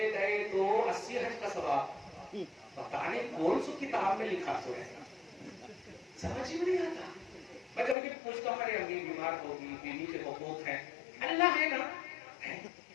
गए तो 80 हज का सवाब। पता नहीं कौन सी किताब में लिखा तो है, समझ ही नहीं आता। मैं कभी कभी पूछता हूँ, अरे अम्मी बीमार होगी, बीवी के हुकूक हैं, अल्लाह है ना,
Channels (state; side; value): drops out; right; at 8.0 s